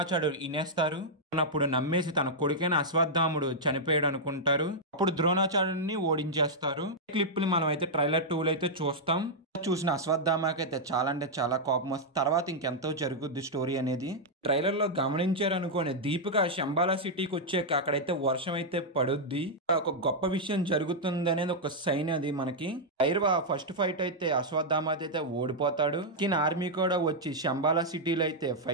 వినేస్తారు. అప్పుడు నమ్మేసి తన కొడుకైన అశ్వత్థాముడు చనిపోయాడు అనుకుంటారు. అప్పుడు ద్రోణాచార్యుడిని ఓడించేస్తారు. క్లిప్ ని మనం అయితే ట్రైలర్ 2 అయితే చూస్తాం. చూసిన అశ్వత్థామకి అయితే చాలా అంటే చాలా కోపం వస్తుంది. తర్వాత ఇంకెంతో జరుగుద్ది స్టోరీ అనేది. ట్రైలర్ లో గమనించారు అనుకోండి, దీపిక శంబాలా సిటీకి వచ్చాక అక్కడైతే వర్షం అయితే పడుద్ది. ఒక గొప్ప విషయం జరుగుతుంది అనేది ఒక సైన్ అది మనకి. భైరవ ఫస్ట్ ఫైట్ అయితే అశ్వత్థామ అయితే ఓడిపోతాడు. ఆర్మీ కూడా వచ్చి శంబాలా సిటీలో అయితే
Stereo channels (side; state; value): both; normal; correlation -0.05